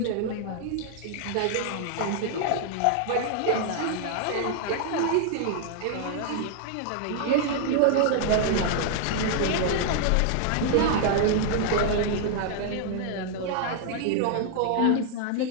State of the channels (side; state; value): both; different; correlation 0.00